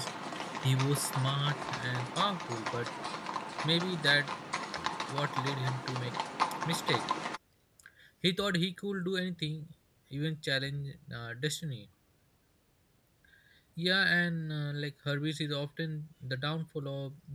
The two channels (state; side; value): identical; both; correlation 1.00